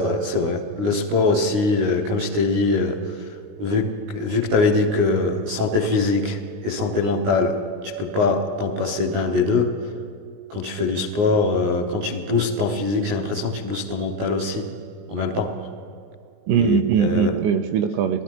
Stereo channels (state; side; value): late; left; 19 ms